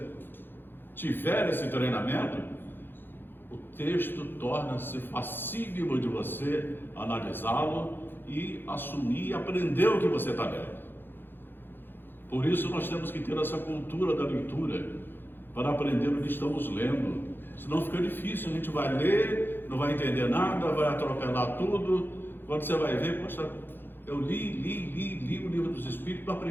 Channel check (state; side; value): late; right; 0.099 ms